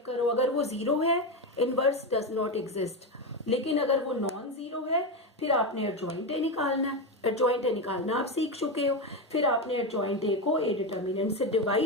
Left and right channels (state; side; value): normal; both; correlation 0.13